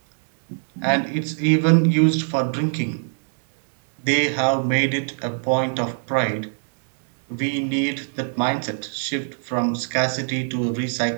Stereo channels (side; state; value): left; silent; digital silence